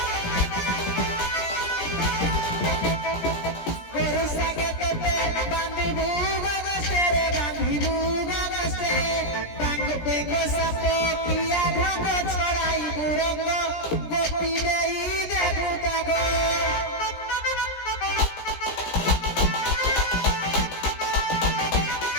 गोरु सागे तेते बांधी भूगा गस्ते रे बांधी भूगा गस्ते बांग बेगो सापो किया ढंगो छड़ाई बुरंगो गोपी देई देबू तागो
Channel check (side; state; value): right; late; 17 ms